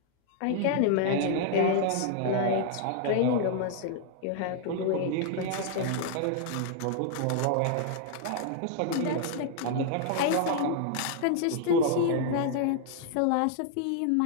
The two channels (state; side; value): different; both; correlation 0.00